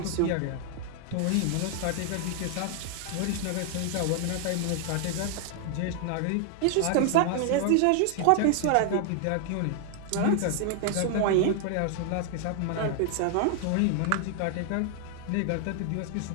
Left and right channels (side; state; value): both; different; correlation 0.00